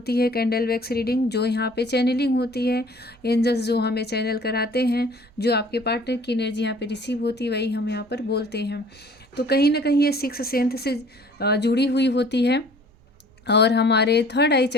है, कैंडल वैक्स रीडिंग, जो यहाँ पे चैनलिंग होती है। एंजल्स जो हमें चैनल कराते हैं, जो आपके पार्टनर की एनर्जी यहाँ पे रिसीव होती है, वही हम यहाँ पर बोलते हैं। तो कहीं ना कहीं ये सिक्स सेंथ से जुड़ी हुई होती है और हमारे थर्ड आई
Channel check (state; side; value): normal; both; correlation 0.52